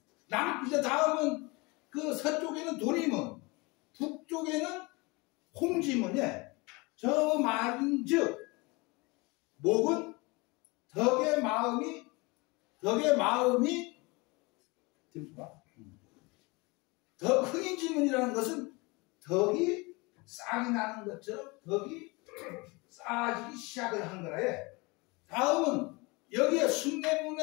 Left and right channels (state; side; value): quieter; right; 26.0 dB